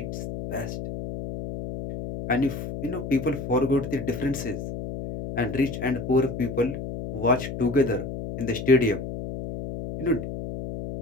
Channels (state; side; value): noise; left; hum, 7 dB below the sound